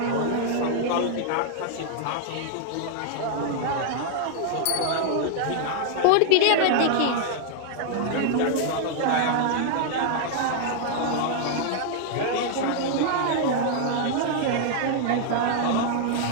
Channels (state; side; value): different; both; correlation -0.01